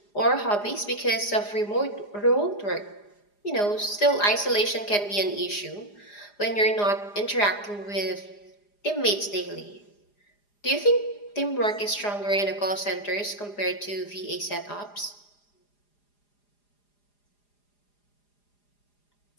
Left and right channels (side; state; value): right; late; 4.9 ms